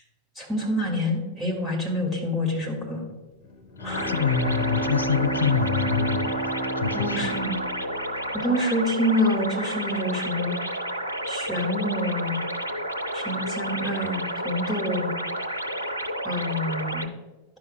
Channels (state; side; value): normal; both; correlation -0.13